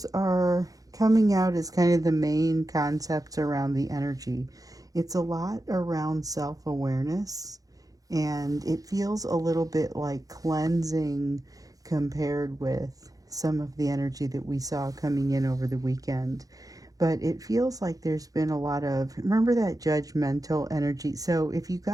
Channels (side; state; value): left; late; 0.17 ms